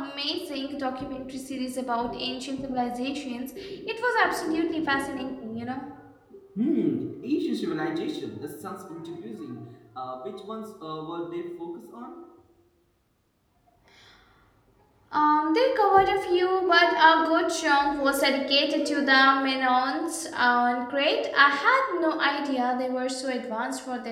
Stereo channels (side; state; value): both; identical; correlation 1.00